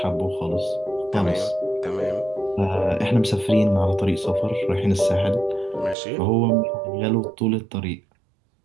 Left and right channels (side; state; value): left; drops out; at 6.0 s